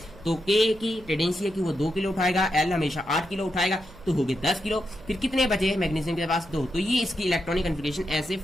तो K की टेंडेंसी है कि वो 2 किलो उठाएगा, L हमेशा 8 किलो उठाएगा, तो हो गए 10 किलो। फिर कितने बचे मैग्नीशियम के पास, 2। तो ये इसकी इलेक्ट्रॉनिक कॉन्फ़िगरेशन ऐसे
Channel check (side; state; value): right; noise; hum, 21 dB below the sound